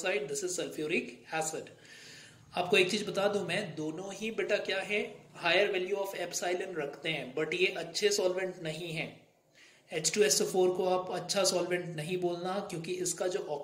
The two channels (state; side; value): identical; both; correlation 1.00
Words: this is sulphuric acid. आपको एक चीज बता दूं मैं, दोनों ही बेटा क्या है, हायर वैल्यू ऑफ एप्सिलॉन रखते हैं, बट ये अच्छे सॉल्वेंट नहीं है। H2SO4 को आप अच्छा सॉल्वेंट नहीं बोलना क्योंकि इसका जो